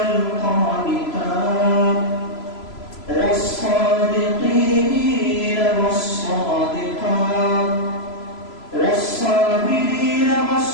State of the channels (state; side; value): late; right; 3.0 ms